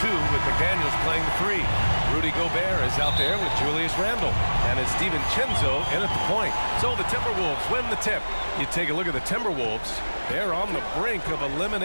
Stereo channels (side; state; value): both; inverted; correlation -1.00